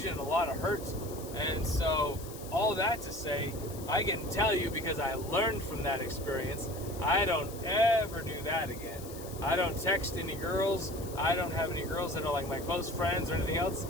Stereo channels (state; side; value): noise; left; hiss, 15 dB below the sound